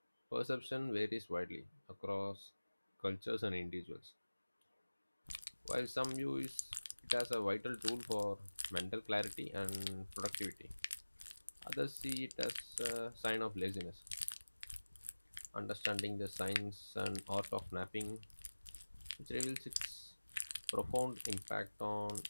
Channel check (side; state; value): both; inverted; correlation -1.00